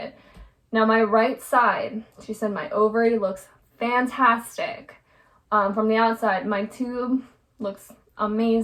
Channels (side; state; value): both; identical; correlation 1.00